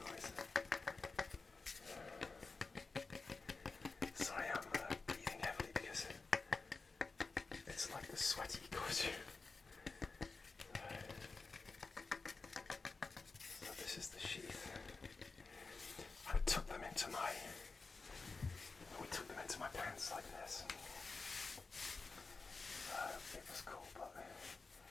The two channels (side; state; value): right; quieter; 4.1 dB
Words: Sorry, I'm breathing heavily because it's like the sweaty costume. So this is the sheath. I took them into my pants like this. It was cool, but